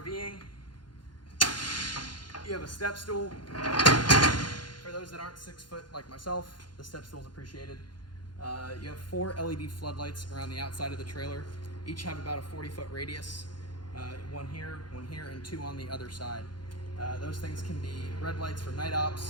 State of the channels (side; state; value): right; late; 0.71 ms